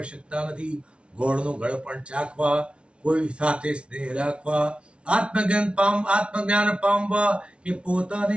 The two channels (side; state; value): left; late; 0.059 ms